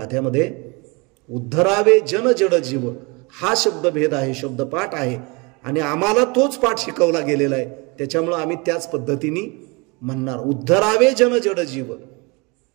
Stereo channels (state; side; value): quieter; left; 28.3 dB